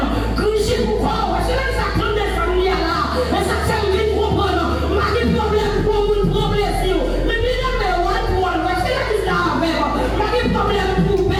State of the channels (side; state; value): both; identical; correlation 1.00